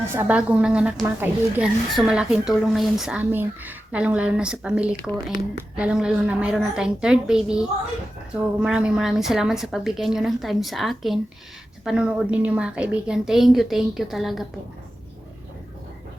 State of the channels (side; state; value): both; normal; correlation 0.92